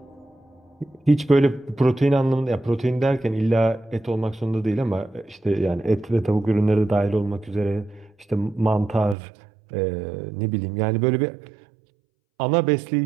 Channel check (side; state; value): left; drops out; at 9.2 s